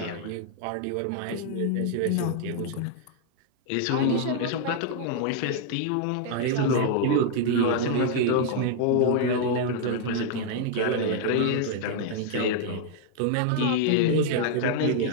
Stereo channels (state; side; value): different; both; correlation 0.00